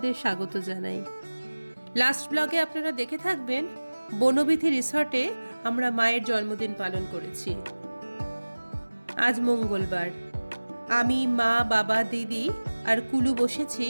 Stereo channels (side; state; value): both; inverted; correlation -1.00